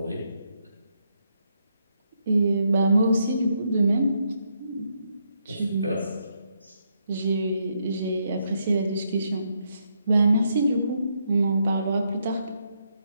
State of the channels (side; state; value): both; inverted; correlation -0.78